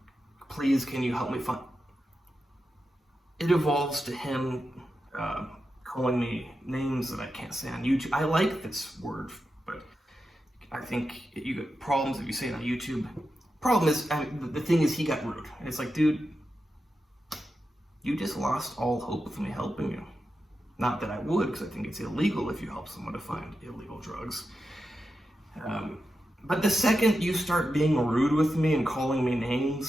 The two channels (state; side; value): normal; both; correlation 0.89